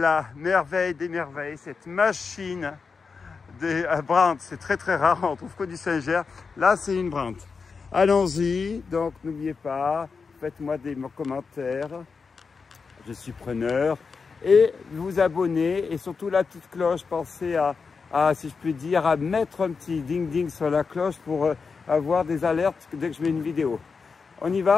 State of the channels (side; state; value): right; quieter; 5.1 dB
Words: merveille des merveilles, cette machine à Brandt. C'est très très rare, on trouve que du Saint-Ger. Là, c'est une Brandt. Allons-y, donc n'oubliez pas, faites-moi des commentaires, je suis preneur. Et vous abonner, et surtout la petite cloche, pensez à, si je puis dire, à mettre un petit ding-ding sur la cloche pour avoir des alertes dès que je mets une vidéo. On y